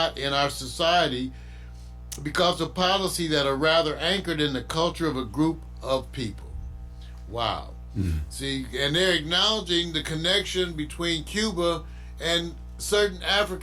in our society because of policy that are rather anchored in the culture of a group of people." Wow. See, and they're acknowledging the connection between Cuba and certain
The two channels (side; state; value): both; identical; correlation 1.00